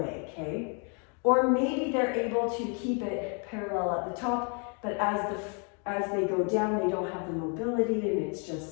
okay? Or maybe they're able to keep it parallel at the top, but as they go down, they don't have the mobility, and it's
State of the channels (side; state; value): right; quieter; 37.8 dB